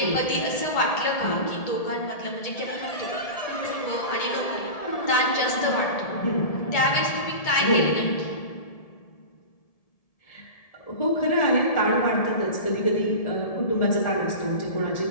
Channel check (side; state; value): right; late; 1.7 ms